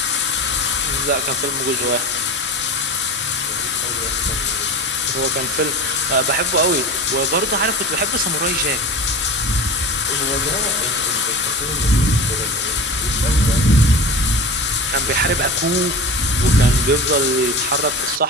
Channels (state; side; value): normal; both; correlation 0.30